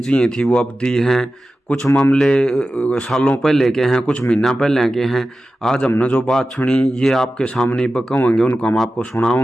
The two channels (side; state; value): both; normal; correlation 0.94